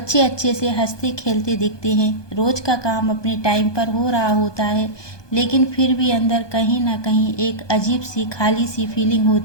अच्छे से हंसते खेलते दिखते हैं, रोज का काम अपने टाइम पर हो रहा होता है, लेकिन फिर भी अंदर कहीं ना कहीं एक अजीब सी खाली सी फीलिंग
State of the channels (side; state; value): right; late; 1.2 ms